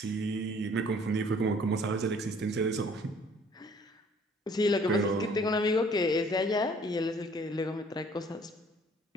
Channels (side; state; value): both; normal; correlation 0.57